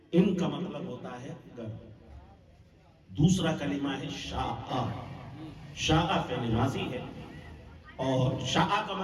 ان کا مطلب ہوتا ہے گر۔ دوسرا کلمہ ہے شاء، شاء فعل ماضی ہے اور شاء کا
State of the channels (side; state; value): both; identical; correlation 1.00